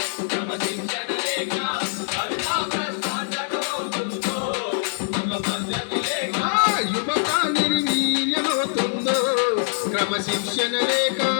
యువత నిర్వీర్యమవుతుందో క్రమశిక్షణ లేక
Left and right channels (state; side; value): silent; right; digital silence